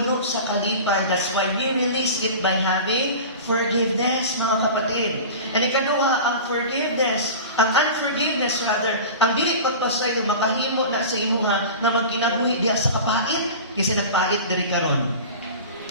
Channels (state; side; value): inverted; both; correlation -0.34